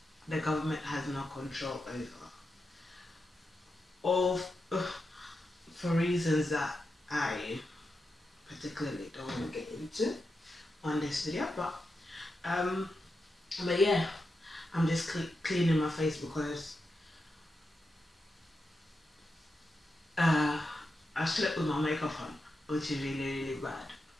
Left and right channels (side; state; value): both; normal; correlation 0.88